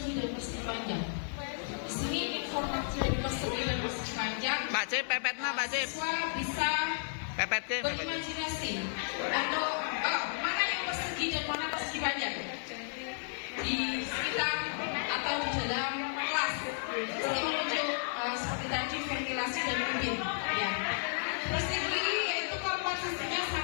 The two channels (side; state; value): right; silent; digital silence